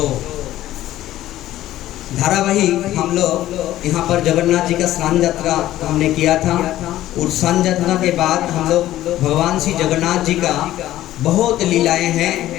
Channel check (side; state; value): right; quieter; 14.2 dB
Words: धारावाहिक हम लोग यहाँ पर जगन्नाथ जी का स्नान यात्रा हमने किया था। और स्नान यात्रा के बाद हम लोग भगवान श्री जगन्नाथ जी का बहुत लीलाएं हैं